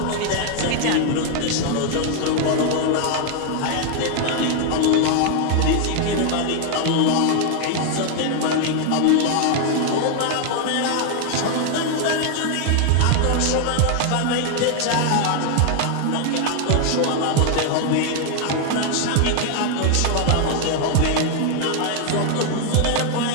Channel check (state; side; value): different; both; correlation 0.00